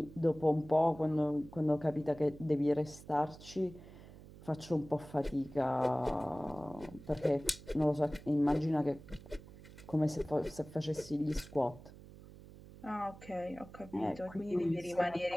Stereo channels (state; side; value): noise; right; hum, 18 dB below the sound